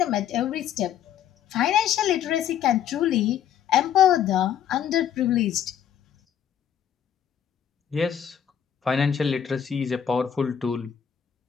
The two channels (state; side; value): quieter; right; 9.3 dB